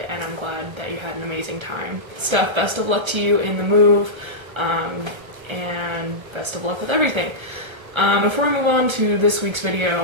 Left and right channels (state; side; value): late; left; 1.3 ms